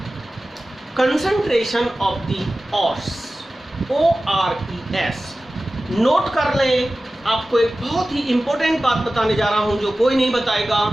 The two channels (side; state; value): both; normal; correlation 0.96